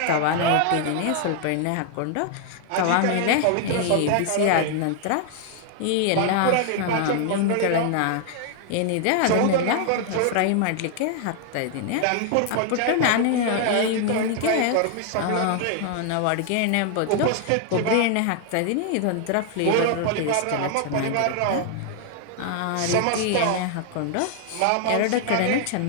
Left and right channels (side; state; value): both; different; correlation 0.00